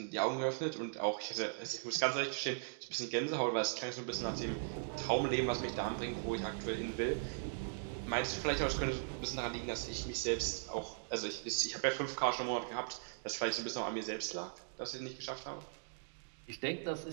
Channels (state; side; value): silent; left; digital silence